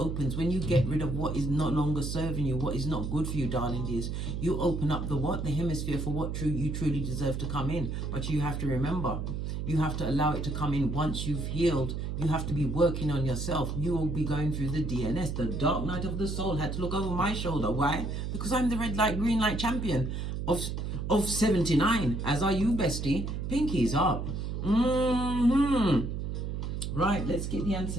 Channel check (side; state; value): right; noise; hum, 3 dB below the sound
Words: When you get rid of what is no longer serving you, what is not good for you, darling dears, you open up the what? The hemisphere for what you truly deserve to come in. But you have to remember, you have to allow it to come in once you've healed. You have to be working on yourself. You will be going through the DNS, the dark night of the soul. Had to look over my shoulder. Why? Because I'm the red light, green light champion of 79. As are you, bestie. Pinkies up. Right, let's get the